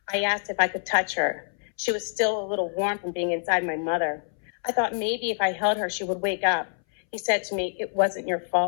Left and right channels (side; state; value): right; silent; 61 dB below the other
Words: I asked if I could touch her. She was still a little warm from being inside my mother. I thought maybe if I held her, she would wake up. He said to me, it wasn't your